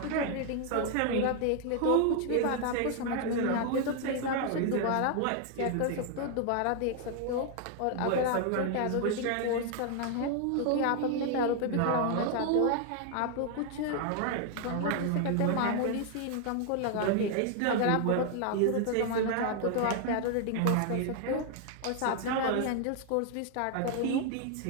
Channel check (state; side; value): different; both; correlation 0.00